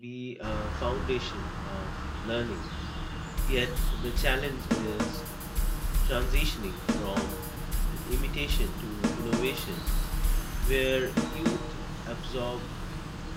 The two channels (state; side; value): identical; both; correlation 1.00